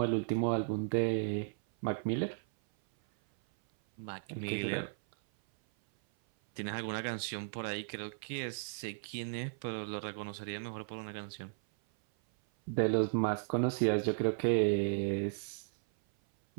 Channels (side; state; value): left; silent; 54 dB below the other